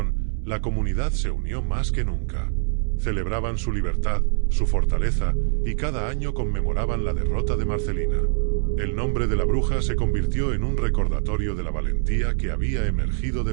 la comunidad se unió más que nunca. Celebraban su libertad, su fortaleza, y cada año conmemoraban la derrota de Marcelina. El nombre de la bruja se convirtió en un recordatorio de la valentía que había emergido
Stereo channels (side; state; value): left; silent; 63 dB below the other